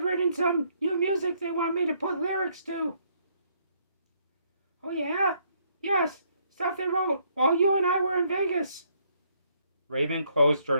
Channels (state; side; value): inverted; both; correlation -0.69